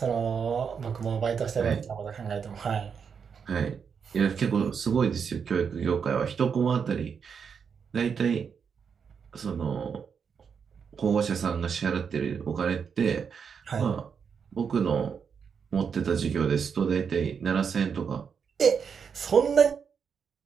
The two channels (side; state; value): left; quieter; 6.5 dB